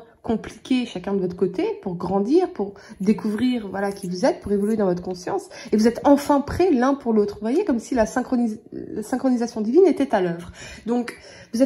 compliqué, chacun de votre côté, pour grandir, pour découvrir voilà, qui vous êtes, pour évoluer dans votre conscience. Et vous êtes enfin prêts l'un pour l'autre. Vous voyez, comme si la synchronisation divine était à l'œuvre. Donc, vous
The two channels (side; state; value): both; identical; correlation 1.00